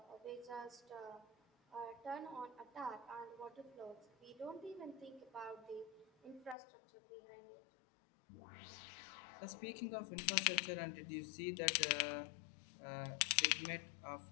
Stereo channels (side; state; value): right; drops out; at 6.6 s